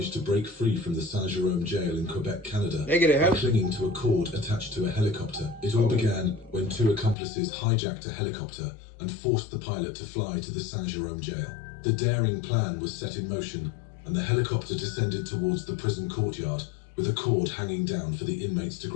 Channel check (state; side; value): drops out; right; at 7.2 s